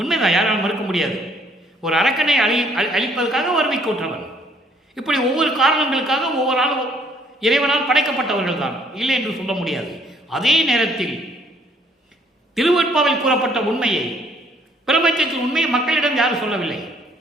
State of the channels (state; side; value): normal; both; correlation 0.64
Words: யாராலும் மறுக்க முடியாது. ஒரு அரக்கனை அழிப்பதற்காக வறுமை கூற்றவர். இப்படி ஒவ்வொரு காரணங்களுக்காக ஒவ்வொரு ஆளும் இறைவனால் படைக்கப்பட்டவர்கள் தான், இல்லை என்று சொல்ல முடியாது. அதே நேரத்தில் திருவெட்பாவில் கூறப்பட்ட உண்மையை, பிரபஞ்சத்தின் உண்மையை மக்களிடம் யாரும் சொல்லவில்லை.